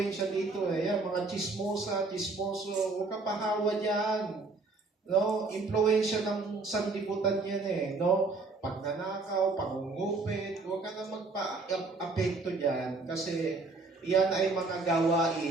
dito Yan, mga chismoso, huwag ka pahawa dyan. No, influensya ng sanlibutan yan no? Pagnanakaw, pangungupit, huwag ka na magpa-apekto dyan kasi yan ay mga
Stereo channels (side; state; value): left; quieter; 3.7 dB